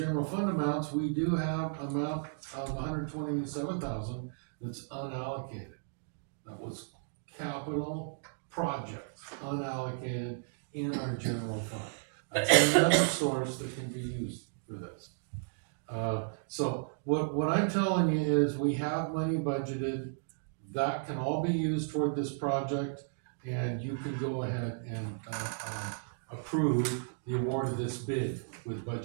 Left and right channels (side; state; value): left; silent; digital silence